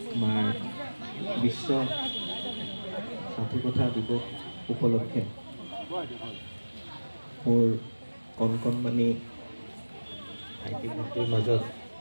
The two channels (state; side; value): inverted; both; correlation -1.00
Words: আমাৰ বিশ্ব সাধুকথা দিৱস উপলক্ষে মোৰ কণকণমানি ভাইটি ভণ্টিৰ মাজত